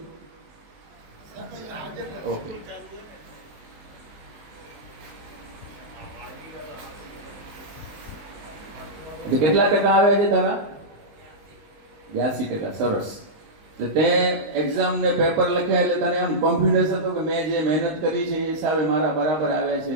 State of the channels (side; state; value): left; late; 19 ms